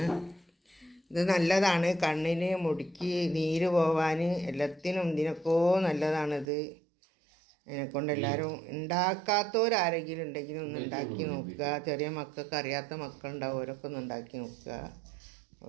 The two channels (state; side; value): drops out; left; at 6.5 s